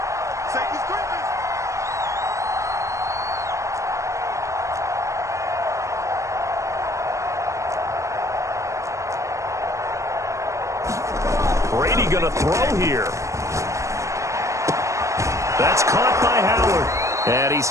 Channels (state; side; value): late; left; 0.15 ms